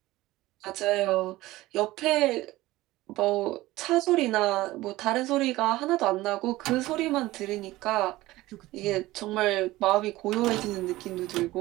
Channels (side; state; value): left; quieter; 17.8 dB